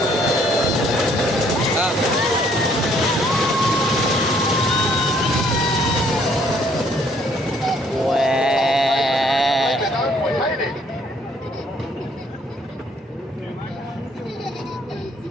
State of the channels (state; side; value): normal; both; correlation 0.64